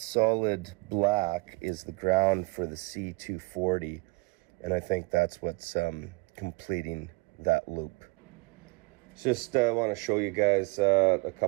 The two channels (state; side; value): quieter; left; 26.4 dB